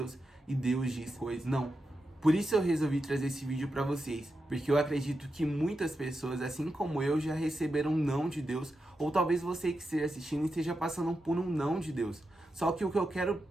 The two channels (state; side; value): normal; both; correlation 0.88